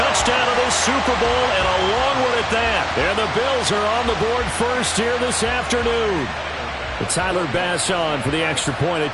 of this Super Bowl and a long one at that. And the Bills are on the board first here this afternoon. But Tyler Bass on for the extra point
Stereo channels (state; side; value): identical; both; correlation 1.00